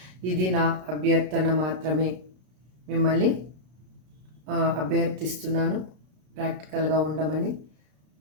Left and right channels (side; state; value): left; late; 33 ms